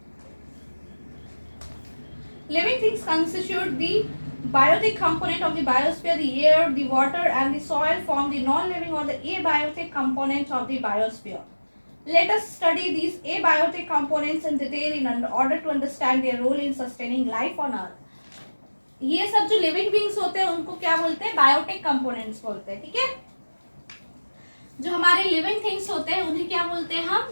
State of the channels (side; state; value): both; inverted; correlation -1.00